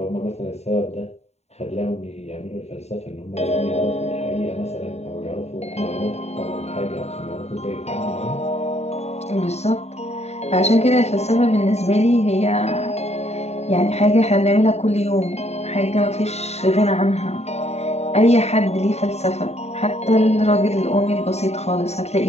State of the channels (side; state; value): right; late; 0.31 ms